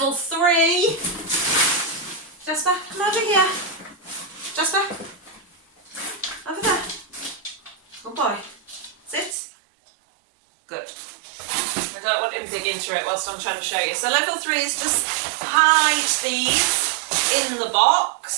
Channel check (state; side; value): drops out; left; at 9.3 s